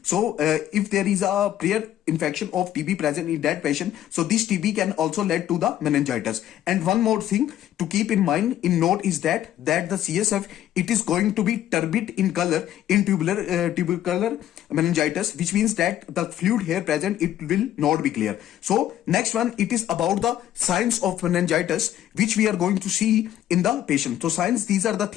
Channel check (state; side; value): quieter; right; 12.0 dB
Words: So if there is a prior infection of TB present in that patient, so this TB can also lead to the meningitis. And one more thing to keep in mind, in note, is that the CSF, it is going to be turbid in color in tubercular meningitis, which means that the fluid here present, it will not be clear. So next one, it is about the signs of meningitis, which we are going to see in the patient. So signs, these are the